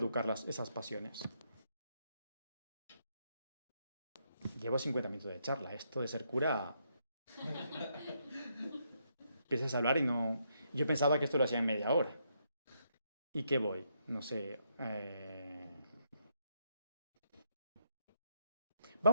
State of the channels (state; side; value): inverted; both; correlation -0.77